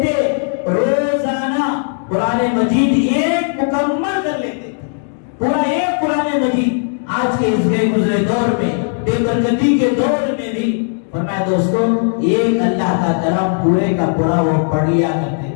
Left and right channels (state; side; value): silent; right; digital silence